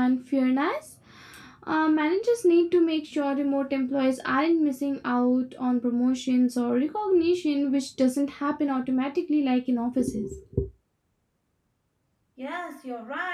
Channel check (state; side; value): identical; both; correlation 1.00